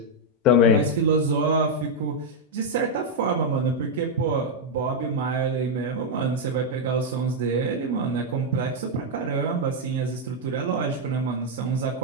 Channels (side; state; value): both; normal; correlation 0.00